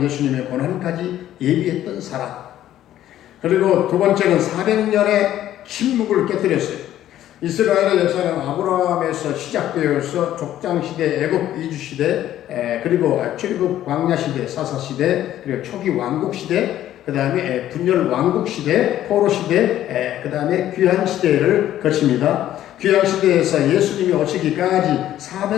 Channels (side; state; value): right; quieter; 12.5 dB